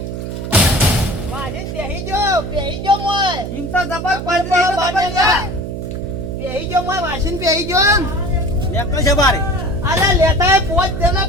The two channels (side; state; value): right; noise; hum, 6 dB below the sound